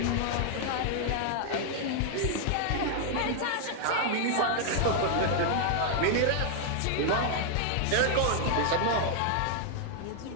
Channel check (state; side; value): different; both; correlation 0.00